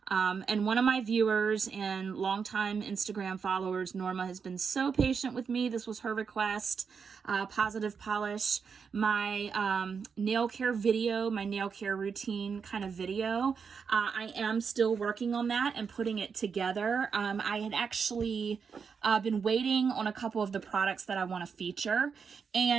and one of my viewers and longtime Instagram followers, Norma, has been so patient with me. This was her request, Positive Polish, my nail care video, my nail care routine kind of video. I am still working on that and putting it together. I had actually I've been waiting on a couple of the products that I want to feature,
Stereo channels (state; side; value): quieter; left; 6.0 dB